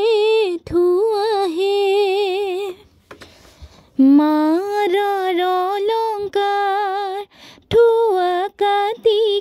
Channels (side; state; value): both; identical; correlation 1.00